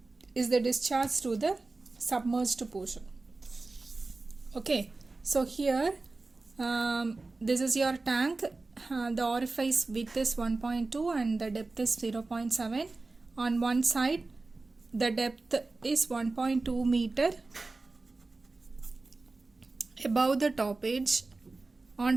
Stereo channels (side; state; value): left; quieter; 3.5 dB